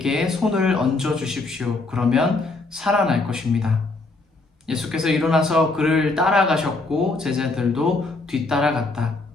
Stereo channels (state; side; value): quieter; right; 3.3 dB